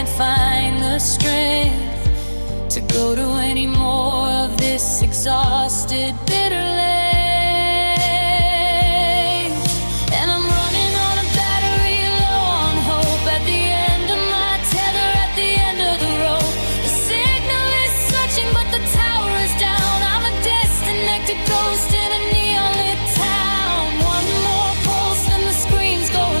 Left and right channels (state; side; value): inverted; both; correlation -1.00